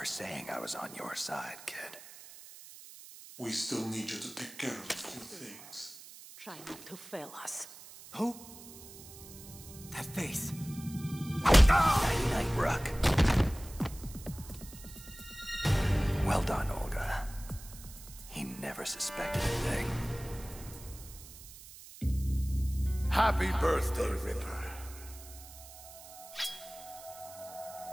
saying I was on your side, kid. We still need you to take care of a few things. Try not to fail us. Who? That face. Night-night, Rook. Well done, Olga. He never suspected a thing. Happy birthday, Ripper.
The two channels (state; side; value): noise; right; hiss, 16 dB below the sound